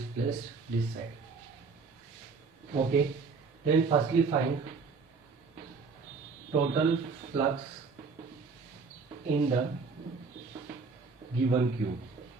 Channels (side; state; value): left; quieter; 4.7 dB